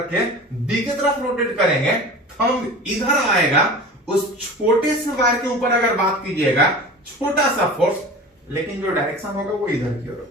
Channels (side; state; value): both; normal; correlation 0.36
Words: के बी के तरफ रोटेट करेंगे, थंब इधर आएगा। उस छोटे से वायर के ऊपर अगर बात कीजिएगा, छोटा सा फोर्स, लेकिन जो डायरेक्शन होगा वो इधर की ओर